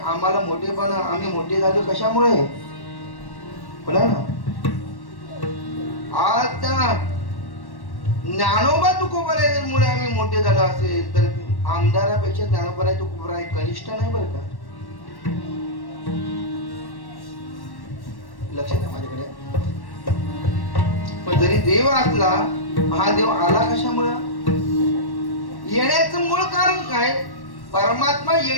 मोठेपणा, आम्ही मोठे झालो कशामुळे बोला ना. आज त्या ज्ञानोबा तुकोबारामुळे आम्ही मोठे झालो असेल तर आमदारापेक्षा ज्ञानोबा तुकोबारा कनिष्ठ नाही बरं का. लक्षात आहे माझ्याकडे. पण जरी देव असला, हा देव आला कशामुळे, येण्याचं मूळ कारण काय, परमात्मा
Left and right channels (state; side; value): late; right; 1.1 ms